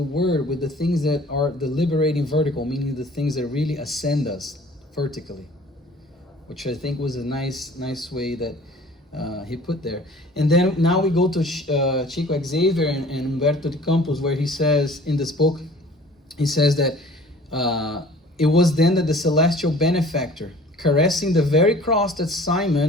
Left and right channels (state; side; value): normal; both; correlation 0.49